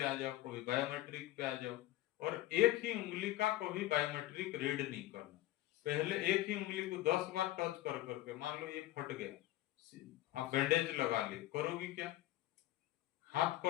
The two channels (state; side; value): quieter; right; 15.9 dB